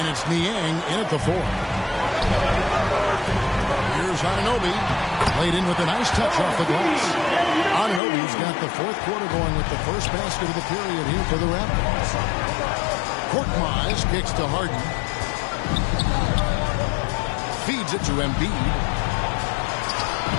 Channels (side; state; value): right; drops out; at 8.0 s